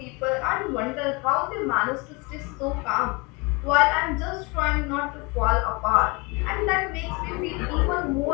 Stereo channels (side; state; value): right; quieter; 27.0 dB